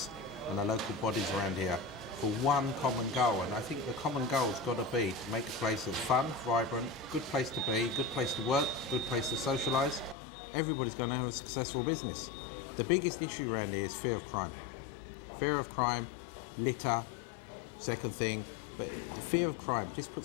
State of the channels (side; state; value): right; drops out; at 10.2 s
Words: and the local bodies around here for one common goal, and I think the common goal has got to be to make a place that's fun, vibrant, good place to be, good place to work, good place to socialise. Everybody's going to have a successful business. The biggest issue around here is fear of crime. Fear of crime, litter, second thing, but fear of crime just